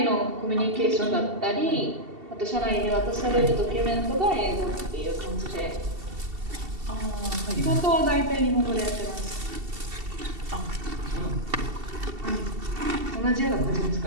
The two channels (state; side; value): late; left; 2.7 ms